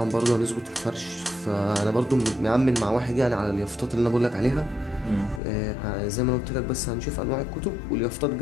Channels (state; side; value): drops out; right; at 5.4 s